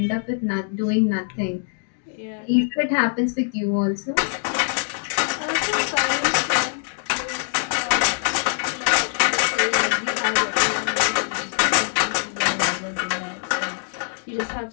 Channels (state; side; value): silent; right; digital silence